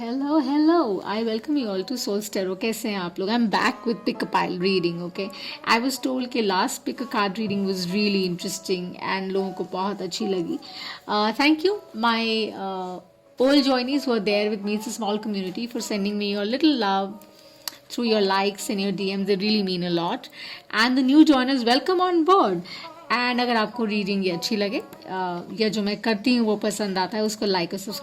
hello. I welcome you all to Soul's Tarot. कैसे हैं आप लोग? I'm back with pick a pile reading. Okay. I was told कि last pick a card reading was really interesting and लोगों को बहुत अच्छी लगी. Thank you, my old joinees who are there with me. It's a small community for sending me your little love through your likes and your DMs. They really mean a lot. And the new joiners, welcome on board. And अगर आपको रीडिंग ये अच्छी लगे या जो मैं करती हूँ वो पसंद आता है उसको लाइक और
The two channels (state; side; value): identical; both; correlation 1.00